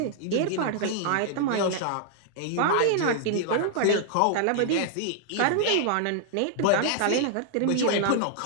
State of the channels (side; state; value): both; different; correlation -0.01